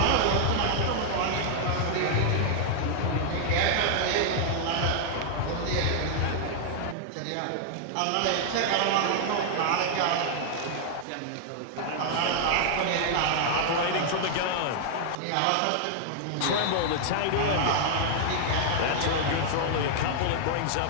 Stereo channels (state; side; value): different; both; correlation 0.00